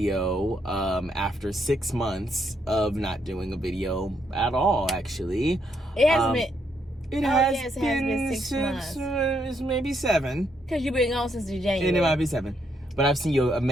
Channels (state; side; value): normal; both; correlation 0.76